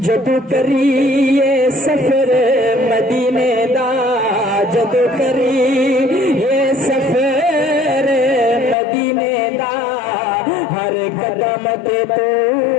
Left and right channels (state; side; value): drops out; right; at 8.8 s